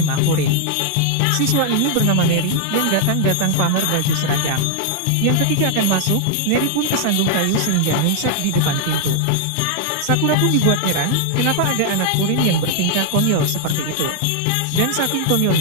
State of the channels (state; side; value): different; both; correlation 0.00